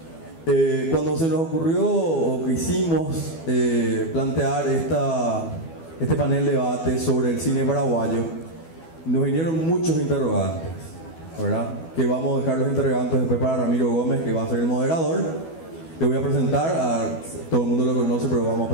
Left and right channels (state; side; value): late; right; 12 ms